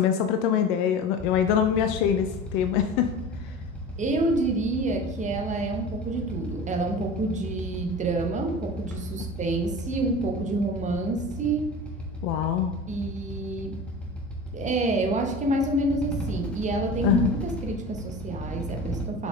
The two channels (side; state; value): both; normal; correlation 0.35